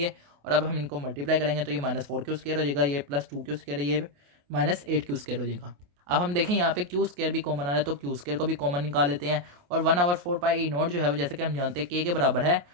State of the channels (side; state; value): left; late; 28 ms